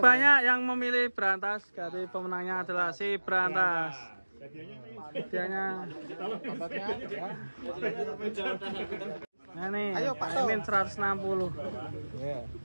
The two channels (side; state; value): both; inverted; correlation -1.00